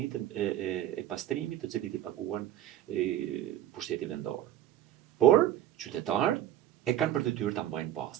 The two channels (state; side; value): quieter; left; 12.2 dB